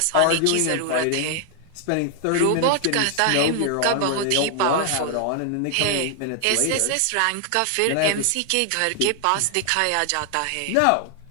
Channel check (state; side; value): different; both; correlation 0.00